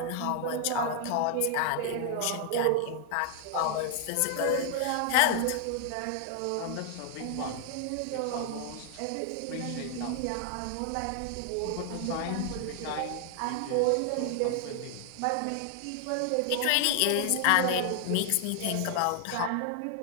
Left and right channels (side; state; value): both; different; correlation 0.00